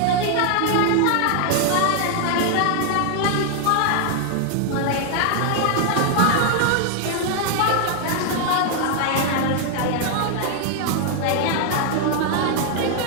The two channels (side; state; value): both; different; correlation 0.00